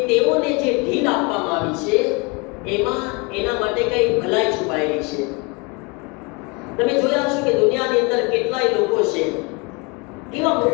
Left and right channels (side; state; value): right; quieter; 28.9 dB